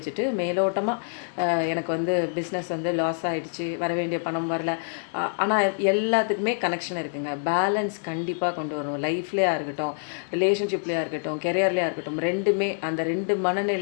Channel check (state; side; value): silent; right; digital silence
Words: மேலோட்டமாக எனக்கு வந்து பிஸ்னஸ் வந்து லாஸ் ஆகிடுச்சு, வர வேண்டிய பணம் வரல. ஆனால் எல்லாத்துக்குமே கனெக்ஷன் இருக்குங்க. பேலன்ஸ் கண்டிப்பாக கொண்டு வரணும். லைஃப்லேயா இருக்கட்டும், ரிலேஷன்ஷிப்லேயா இருக்கட்டும், கெரியர்லேயா இருக்கட்டும், ரெண்டுமே அந்த ரெண்டு